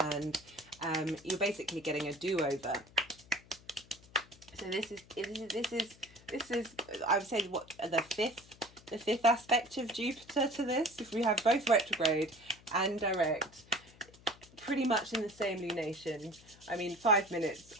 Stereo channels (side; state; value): left; noise; hum, 24 dB below the sound